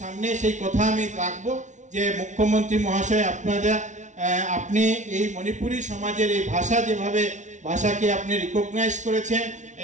সামনে সেই কথা আমি রাখবো যে মুখ্যমন্ত্রী মহাশয় আপনি এই মণিপুরী সমাজের এই ভাষাকে আপনি রিকগনাইজ করেছেন,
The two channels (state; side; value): late; left; 0.36 ms